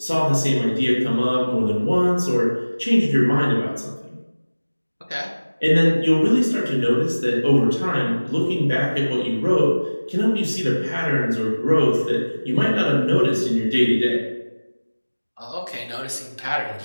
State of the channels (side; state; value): both; inverted; correlation -1.00